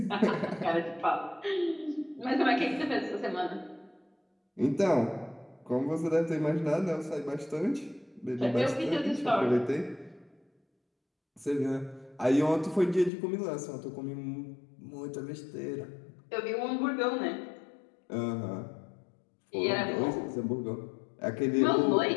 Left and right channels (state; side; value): drops out; right; at 13.1 s